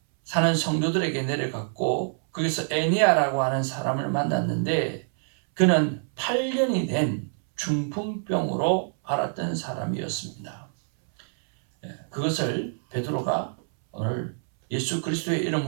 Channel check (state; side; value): silent; left; 61 dB below the other